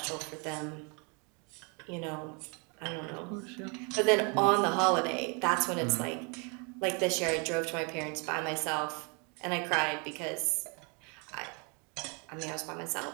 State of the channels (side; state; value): left; quieter; 33.9 dB